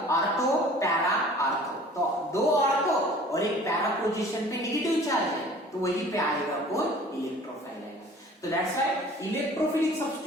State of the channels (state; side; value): normal; both; correlation 0.48